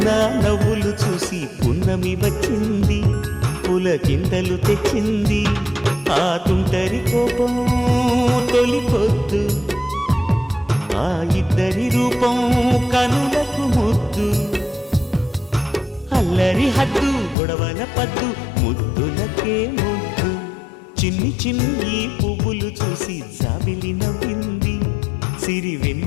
నవ్వులు చూసి పున్నమి వచ్చింది పులకింతలు తెచ్చింది ఆ తుంటరి కోపం తొలి పొద్దు ఆ ఇద్దరి రూపం కనులకు ముద్దు అల్లరి హద్దు గొడవల పద్దు ముద్దులకే ముద్దు చిన్ని చిన్ని పువ్వులు చూసి జాబిలి నవ్వింది సిరి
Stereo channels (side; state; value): right; drops out; at 17.4 s